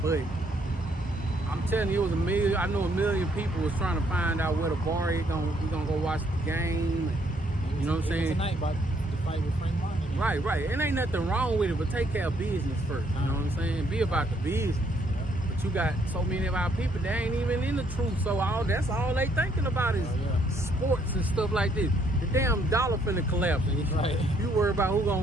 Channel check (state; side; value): normal; both; correlation 0.68